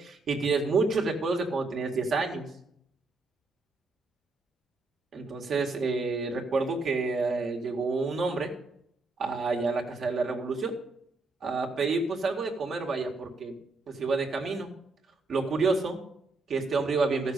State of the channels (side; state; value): left; quieter; 3.5 dB